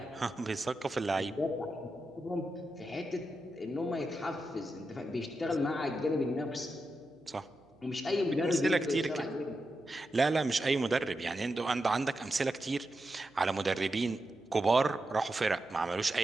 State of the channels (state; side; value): noise; right; hum, 29 dB below the sound